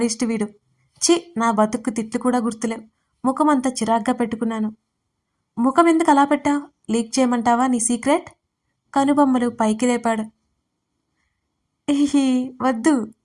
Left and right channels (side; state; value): both; identical; correlation 1.00